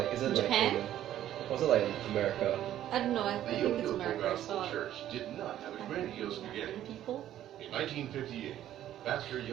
Is it Japan? like Korean? Or is it like in America? I don't know. I The think it's Youngi America. Gospel So Church did not have a grandiose beginning. people. In 1958, Pastor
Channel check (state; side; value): quieter; left; 12.1 dB